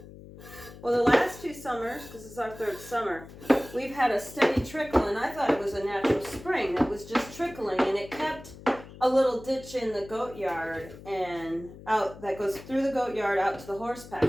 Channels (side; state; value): left; noise; hum, 17 dB below the sound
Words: Well, the last 2 summers, because this is our 3rd summer, we've had a steady trickle, and I thought it was a natural spring that was just trickling, and it kept a little ditch in the goat yard and out that goes through the goat yard out to the horse